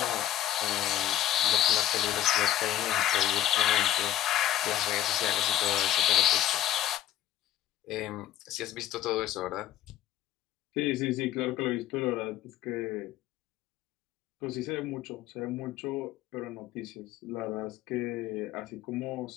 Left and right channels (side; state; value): right; quieter; 12.3 dB